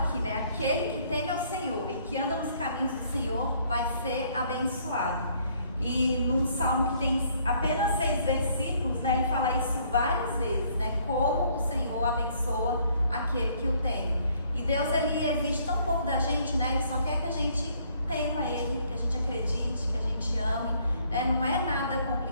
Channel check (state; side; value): inverted; both; correlation -0.64